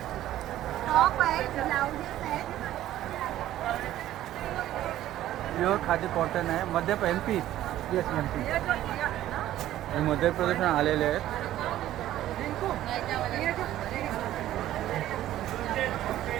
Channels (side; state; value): left; quieter; 13.4 dB